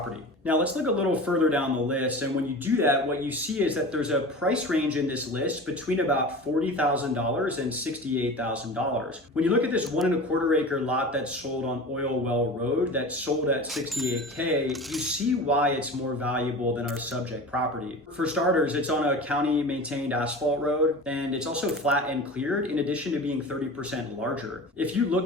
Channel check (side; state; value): both; normal; correlation 0.34